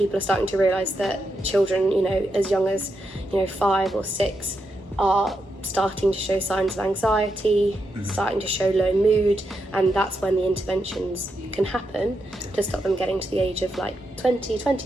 are starting to realise that children, you know, as young as 5 or 6 are starting to show signs of anxiety, starting to show low mood, and that's when the interventions can happen to stop them getting to the age of like 20,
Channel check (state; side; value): normal; both; correlation 0.84